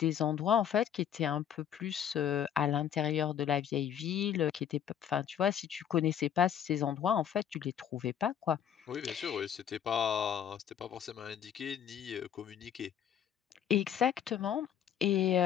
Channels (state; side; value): quieter; right; 9.3 dB